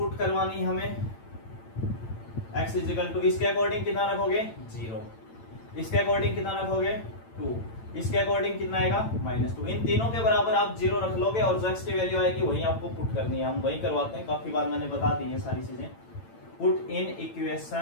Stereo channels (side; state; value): right; late; 8.9 ms